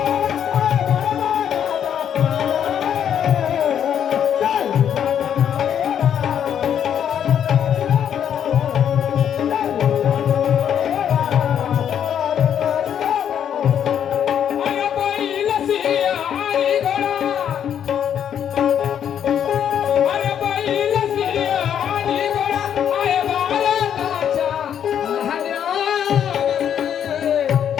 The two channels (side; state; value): right; quieter; 9.1 dB